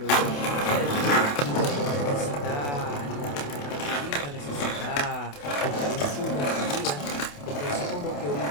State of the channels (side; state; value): right; late; 28 ms